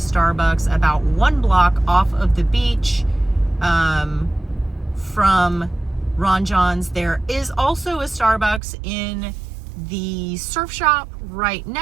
about 1 block off of the beach from Ron Jon's. There is also a Starbucks in the surf shop right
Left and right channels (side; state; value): left; drops out; at 8.6 s